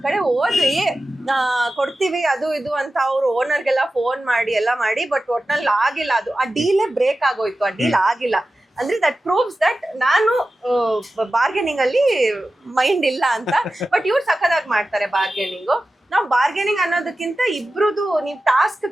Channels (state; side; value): normal; both; correlation 0.94